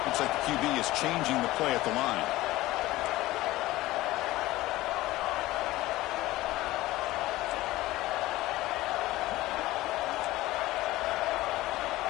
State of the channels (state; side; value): quieter; right; 17.6 dB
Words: Looks like the QB is changing the play at the line.